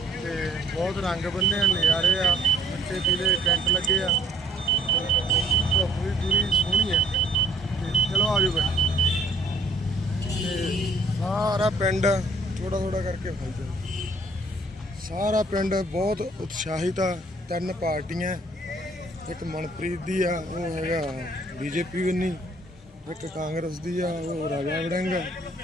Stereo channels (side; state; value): both; normal; correlation 0.57